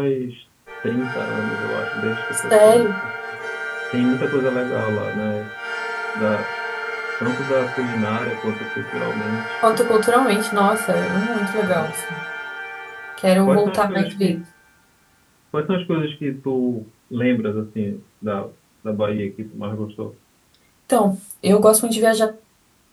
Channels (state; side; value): identical; both; correlation 1.00